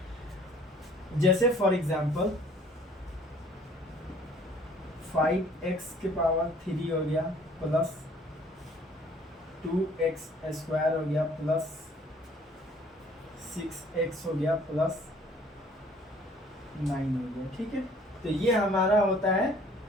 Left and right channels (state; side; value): normal; both; correlation 0.56